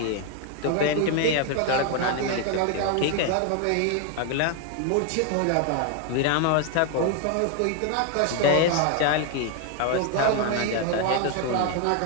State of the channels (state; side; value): different; both; correlation 0.01